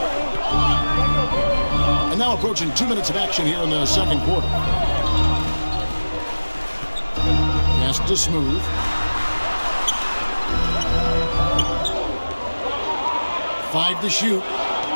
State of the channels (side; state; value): both; inverted; correlation -1.00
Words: And now approaching 2 minutes of action here in the second quarter. Pass to Smooth. Five to shoot.